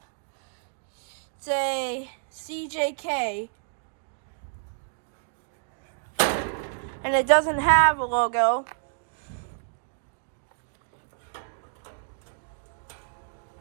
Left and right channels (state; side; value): silent; left; digital silence